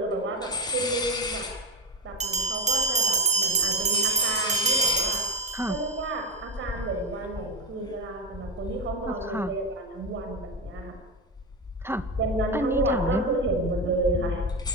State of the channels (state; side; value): normal; both; correlation 0.16